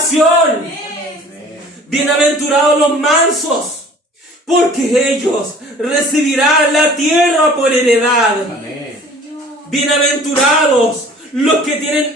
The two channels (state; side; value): normal; both; correlation 0.49